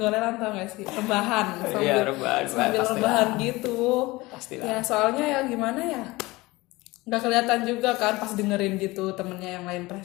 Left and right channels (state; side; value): quieter; right; 21.3 dB